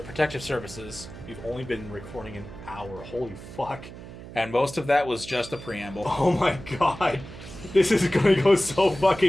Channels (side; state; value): right; noise; hum, 14 dB below the sound